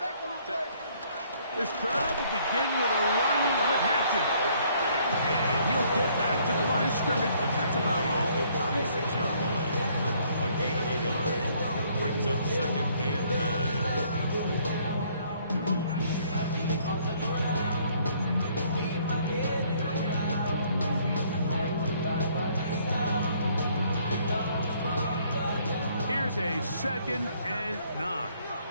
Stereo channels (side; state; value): both; inverted; correlation -0.63